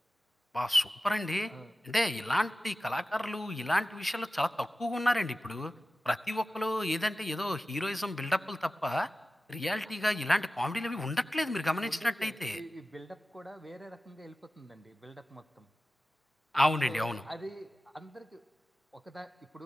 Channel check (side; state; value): both; normal; correlation 0.95